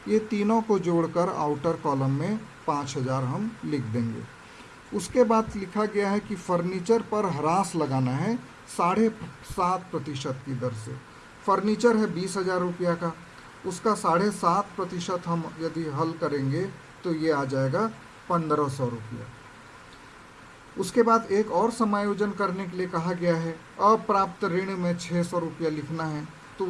ये तीनों को जोड़कर आउटर कॉलम में 5,000 हम लिख देंगे। उसके बाद लिखा गया है कि फर्नीचर पर ह्रास लगाना है 7.5% की दर से। फर्नीचर है 20,000 रुपया का, उसका 7.5% हम यदि हल करेंगे तो ये आ जाएगा 1,500 रुपया। उसके बाद एक और समायोजन करने के लिए कहा गया है, अप्राप्त ऋण में 600 रुपया लिखना है, तो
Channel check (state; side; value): identical; both; correlation 1.00